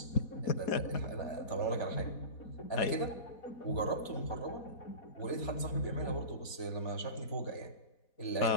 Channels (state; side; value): late; right; 4.1 ms